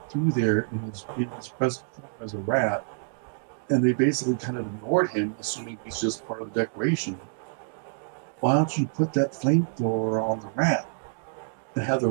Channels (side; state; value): left; silent; digital silence